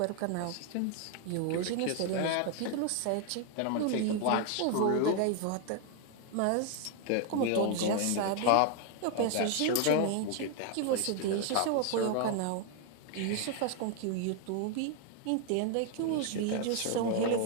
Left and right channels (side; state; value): both; different; correlation 0.00